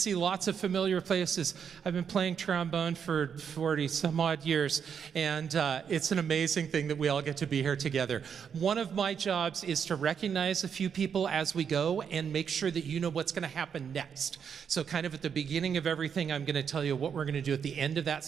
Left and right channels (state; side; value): quieter; left; 7.3 dB